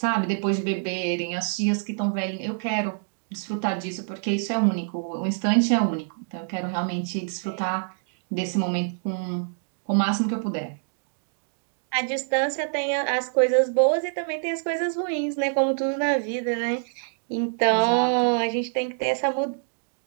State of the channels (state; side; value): silent; left; digital silence